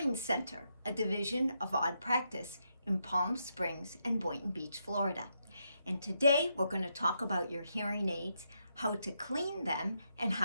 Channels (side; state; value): both; inverted; correlation -0.80